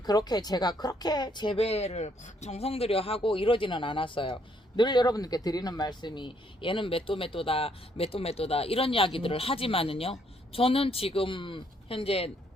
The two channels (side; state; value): both; normal; correlation 0.70